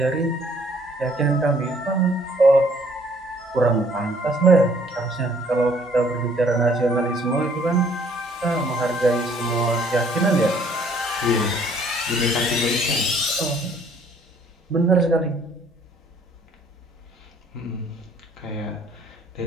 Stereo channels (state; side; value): normal; both; correlation 0.61